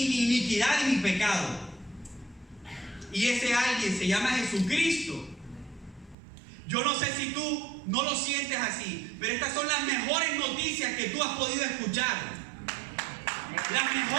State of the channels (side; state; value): left; drops out; at 6.2 s